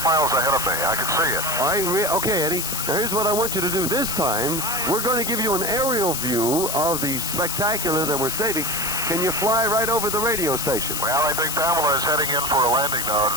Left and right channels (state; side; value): noise; left; hiss, 2 dB below the sound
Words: miles ahead of me. I can see it. Okay, Eddie. Now, here's what I want you to do. This time, we're going to give you an aerial view of the spectacular that we're saving. Can you fly right over the radio station? Well, I think Pamela is heading in for a landing now at